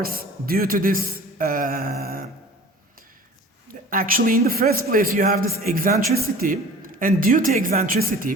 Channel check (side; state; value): both; normal; correlation 0.44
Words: due to this. Actually, in the first place, you have this eccentricity, and due to